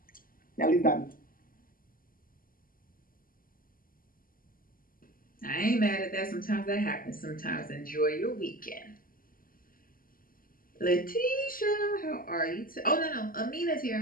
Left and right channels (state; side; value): late; right; 0.41 ms